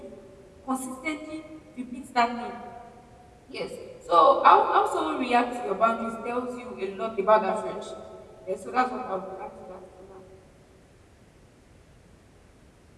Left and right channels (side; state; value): both; identical; correlation 1.00